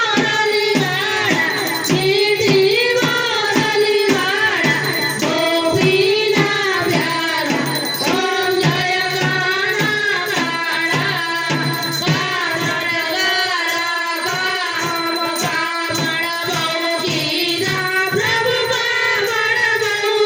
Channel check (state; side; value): identical; both; correlation 1.00